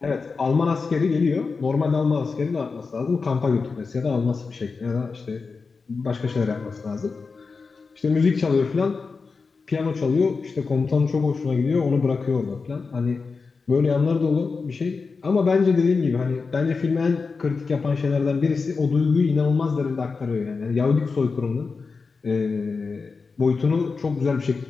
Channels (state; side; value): quieter; right; 4.6 dB